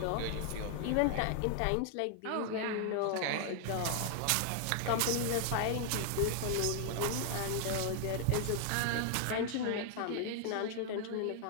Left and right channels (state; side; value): different; both; correlation 0.00